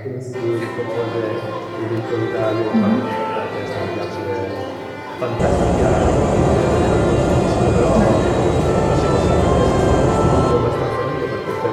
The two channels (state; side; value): identical; both; correlation 1.00